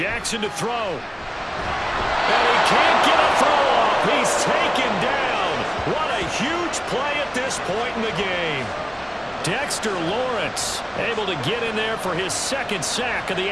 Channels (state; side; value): identical; both; correlation 1.00